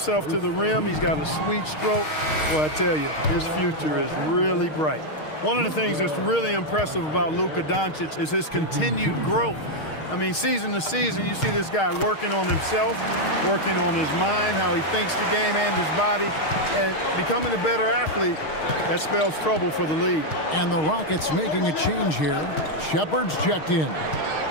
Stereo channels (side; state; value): right; late; 6.4 ms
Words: to the rim. He's got a sweet stroke. Well, I tell you, his future is really bright. One of the things that's really impressive about Luka Doncic is his continued growth. I mean, season to season, you see this guy working on himself, working on his mind, how he thinks the game and his body, and becoming a better athlete. That spells trouble for the league. And the Rockets making a change here. Shepard's checked in.